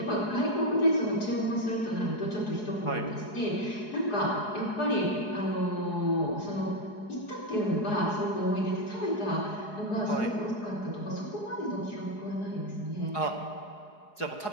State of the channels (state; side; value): late; right; 4.8 ms